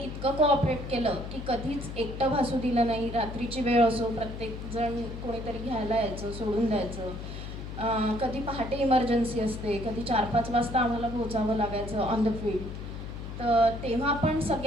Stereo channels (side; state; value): left; noise; hum, 9 dB below the sound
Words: कोऑपरेट केलं की कधीच एकटं भासू दिलं नाही. रात्रीची वेळ असो, प्रत्येकजण कोणीतरी घ्यायला यायचं, सोडून द्यायचं. कधी पहाटे इमर्जन्सी असते, कधी 4-5 वाजता आम्हाला पोहोचावं लागायचं ऑन द फील्ड. तर तेव्हा पण